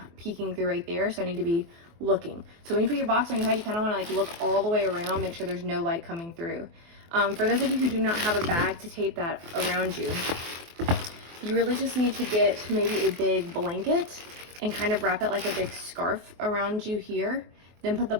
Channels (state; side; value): late; left; 24 ms